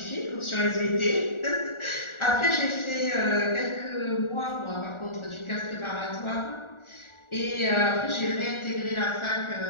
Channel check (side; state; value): right; late; 1.4 ms